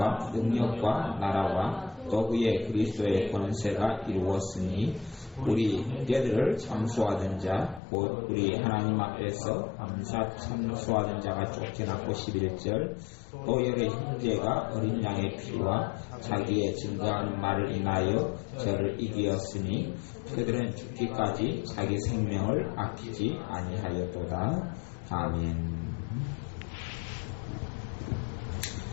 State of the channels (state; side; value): drops out; right; at 7.8 s